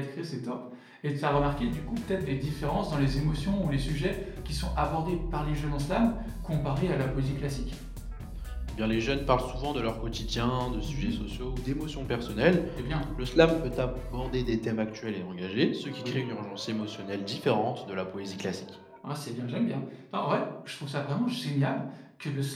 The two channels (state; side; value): identical; both; correlation 1.00